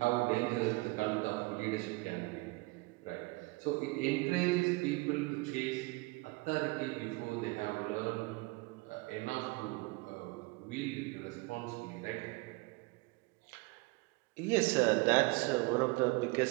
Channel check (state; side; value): quieter; left; 25.0 dB